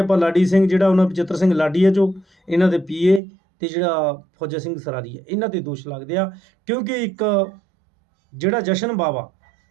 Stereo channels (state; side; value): drops out; left; at 3.2 s